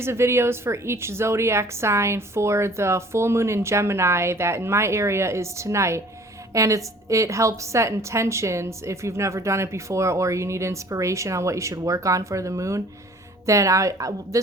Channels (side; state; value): both; normal; correlation 0.51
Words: of videos for each zodiac sign for the full moon in Gemini that in my area is tonight. And it helps set intentions if you've never done it before or you need inspiration on what you should work on for the moon. Then